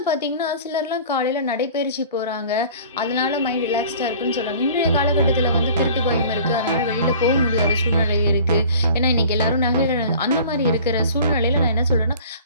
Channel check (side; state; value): both; inverted; correlation -0.45